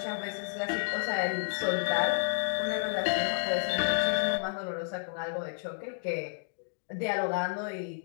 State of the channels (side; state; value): right; silent; digital silence